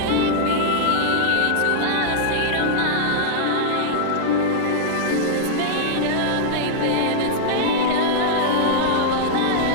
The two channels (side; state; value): both; different; correlation -0.02